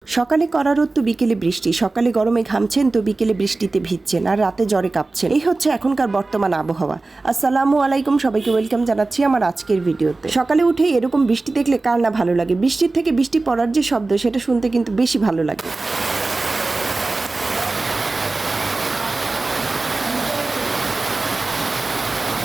সকালে কড়া রোদ তো বিকেলে বৃষ্টি, সকালে গরমে ঘামছেন তো বিকেলে বৃষ্টিতে ভিজছেন আর রাতে জ্বরে কাঁপছেন। এই হচ্ছে এখনকার বর্তমান আবহাওয়া। আসসালামু আলাইকুম, সবাইকে ওয়েলকাম জানাচ্ছি আমার আজকের ভিডিওতে। সকালে উঠে এরকম বৃষ্টি দেখলে কার না ভালো লাগে। বৃষ্টির থেকে বৃষ্টি পড়ার যে শব্দ সেটা শুনতে কিন্তু বেশি ভালো লাগে।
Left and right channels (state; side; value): quieter; left; 3.4 dB